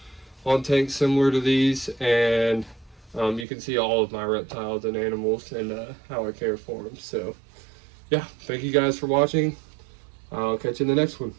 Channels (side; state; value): left; drops out; at 3.5 s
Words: on tanks similar to these, and you can see all of my reptiles and animals and how I care for them. So yeah, thank you guys for watching. I'll catch you in the next one.